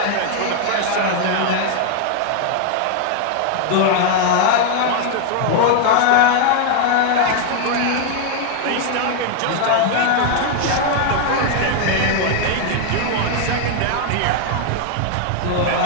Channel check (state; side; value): different; both; correlation 0.00